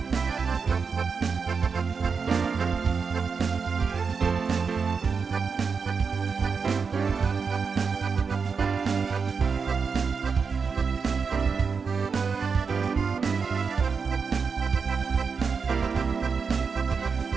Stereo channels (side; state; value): left; quieter; 5.4 dB